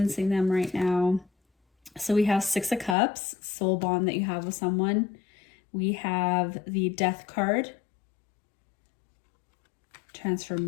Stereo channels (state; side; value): drops out; right; at 3.0 s